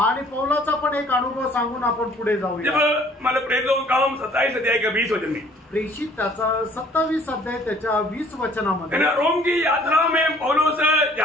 पौलाचा पण एक अनुभव सांगून आपण पुढे जाऊया. जब मला प्रेरितों का काम 27 अध्याय का 20 वचन में प्रेषित त्याचा 27 अध्याय त्याच्या 20 वचनामध्ये रोम की यात्रा में पौलुस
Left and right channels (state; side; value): normal; both; correlation 0.56